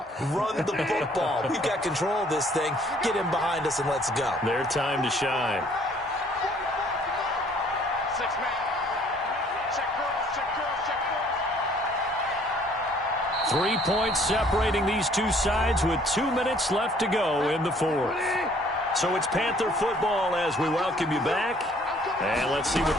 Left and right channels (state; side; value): normal; both; correlation 0.59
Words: Run the football. We've got control of this thing. Get him behind us and let's go. Their time to shine. 3 points separating these two sides with 2 minutes left to go in the 4th. So it's Panther football as we welcome you back. And let's see what